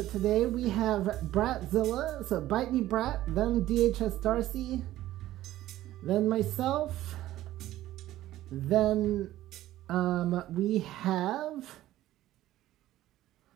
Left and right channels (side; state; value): left; quieter; 14.5 dB